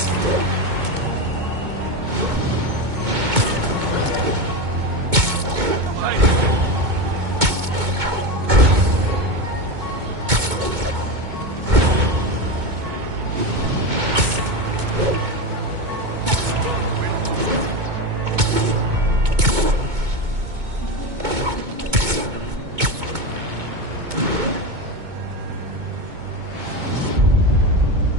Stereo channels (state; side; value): late; left; 2.2 ms